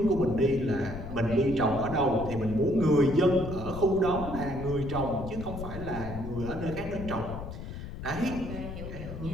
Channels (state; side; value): noise; left; rumble, 9 dB below the sound